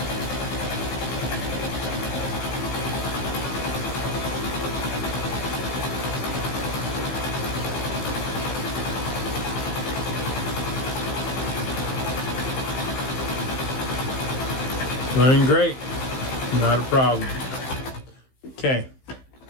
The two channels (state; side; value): late; right; 15 ms